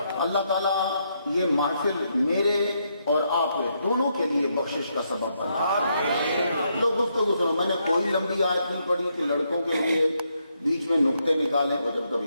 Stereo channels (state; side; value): inverted; both; correlation -0.78